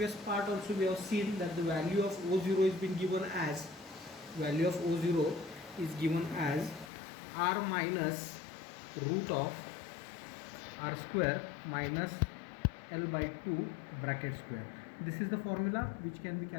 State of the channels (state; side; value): drops out; right; at 6.9 s